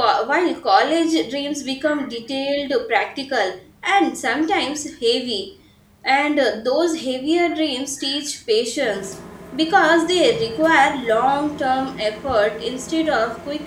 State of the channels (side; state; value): both; identical; correlation 1.00